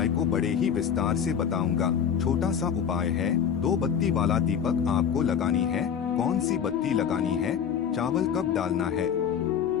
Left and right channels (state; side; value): quieter; right; 7.8 dB